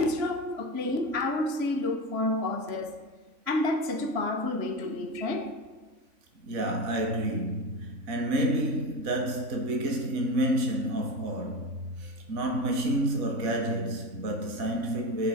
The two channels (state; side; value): late; left; 3.5 ms